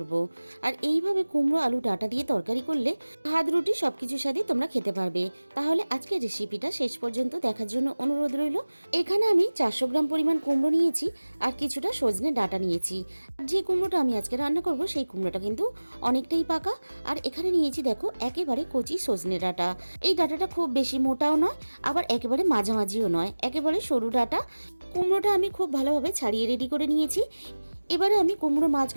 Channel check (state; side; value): inverted; both; correlation -1.00